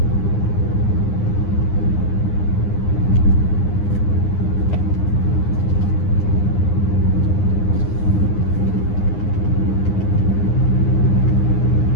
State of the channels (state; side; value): late; right; 9.8 ms